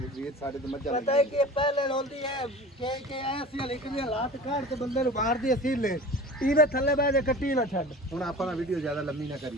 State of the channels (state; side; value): normal; both; correlation 0.38